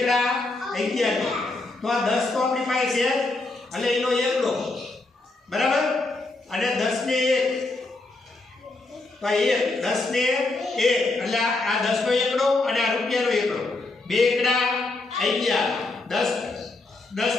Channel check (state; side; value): quieter; right; 3.2 dB